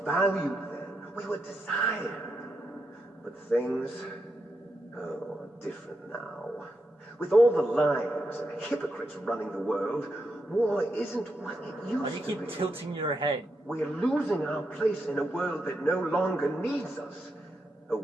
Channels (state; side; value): normal; both; correlation 0.84